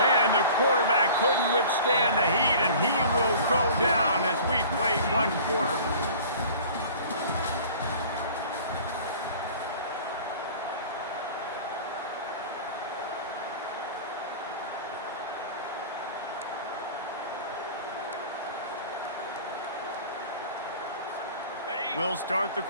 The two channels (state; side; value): inverted; both; correlation -0.44